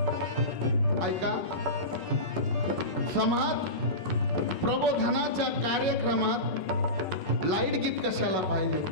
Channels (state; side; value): late; right; 5.4 ms